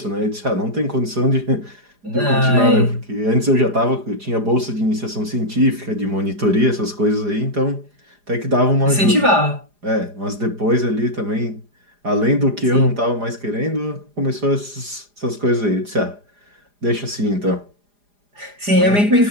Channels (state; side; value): late; left; 4.9 ms